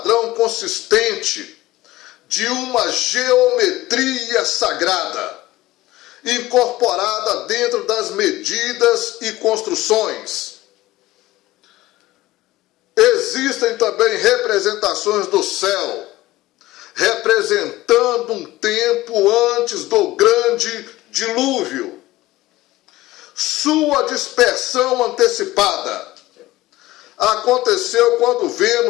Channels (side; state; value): right; quieter; 17.6 dB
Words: consistente de uma geometria sagrada, incorporada dentro das medidas e construções. Existem também representações do céu, representando um tempo antes do grande dilúvio, sua dispersão antecipada. Aconteceu quando